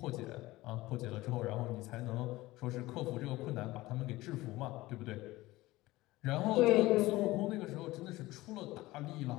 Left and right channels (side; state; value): right; quieter; 18.7 dB